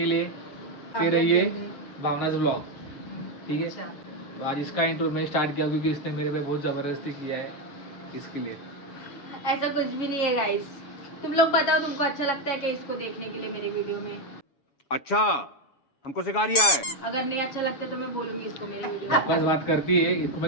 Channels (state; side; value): late; right; 7.1 ms